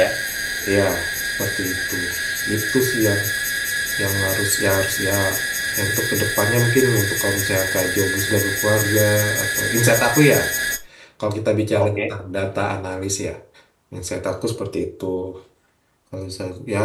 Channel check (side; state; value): both; identical; correlation 1.00